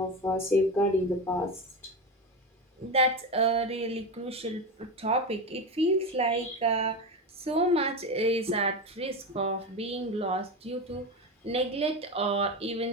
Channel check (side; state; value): both; normal; correlation 0.19